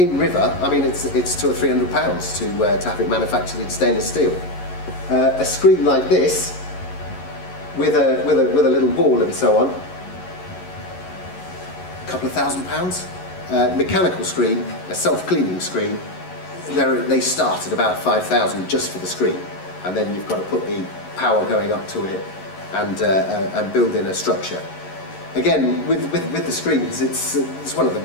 river. I mean, it's £200 or £300 to have it manufactured in stainless steel. A screen like this, with a little wall and so on, a couple of £1,000. Mechanical screen, a self-cleaning screen, they start at about 5,000 just for the screen, and then you've got to put the power going up to it and build in a structure. Again, with the screens, it's one of the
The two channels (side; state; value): right; late; 11 ms